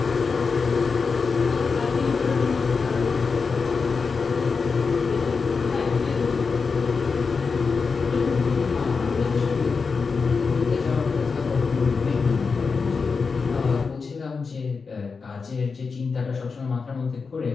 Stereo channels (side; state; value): right; quieter; 4.9 dB